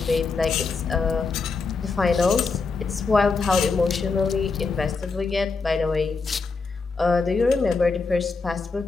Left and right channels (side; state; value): right; quieter; 4.4 dB